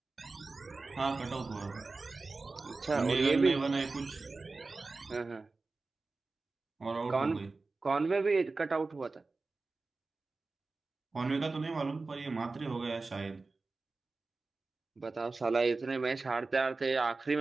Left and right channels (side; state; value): left; quieter; 3.7 dB